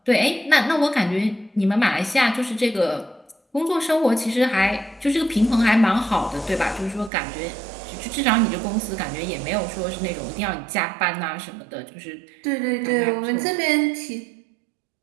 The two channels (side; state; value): left; drops out; at 7.1 s